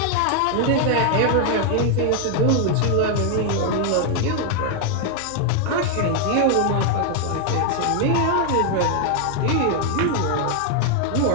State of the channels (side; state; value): both; different; correlation 0.00